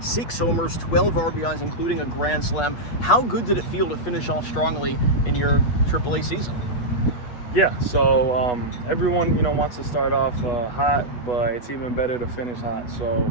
6 homers, 12 RBIs, including a grand slam. How good did it feel to finish off strongly in your AAA season? Yeah, so everyone, wants to start off hot, but it's even better to finish hot. So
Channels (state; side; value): late; right; 8.3 ms